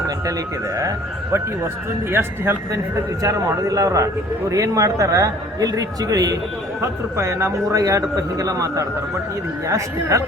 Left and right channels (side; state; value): both; normal; correlation 0.53